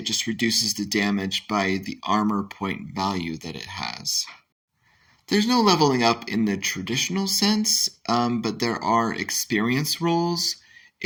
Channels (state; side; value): identical; both; correlation 1.00